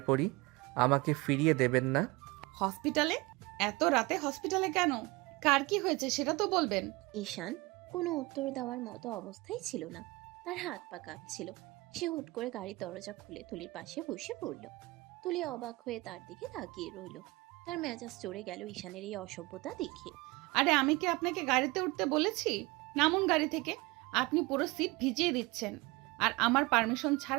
পড়ি, আমাকে ফিরিয়ে দেবেন না? হসপিটালে? এত রাতে হসপিটালে কেন? কার কি হয়েছে সেটা তো বলবেন। ঈশান কোনো উত্তর দেওয়ার মতো অবস্থায় ছিল না, তার হাত পা কাঁপছিল। সে হুট করে গাড়ির দরজা খুলে তুলির পাশে বসে পড়ল। তুলি অবাক হয়ে তার দিকে তাকিয়ে রইল। তার মেজাজ চড়ে গেল ঈশানের এই অসভ্যতা দেখে। আরে আমি কি আপনাকে গাড়িতে উঠতে বলেছি? নামুন গাড়ি থেকে। আপনি পুরো সিট ভিজিয়ে দিচ্ছেন, আর আমার পারমিশন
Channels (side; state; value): left; quieter; 23.1 dB